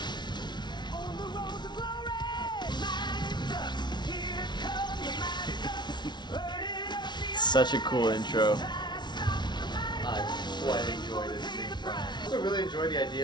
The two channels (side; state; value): right; late; 0.21 ms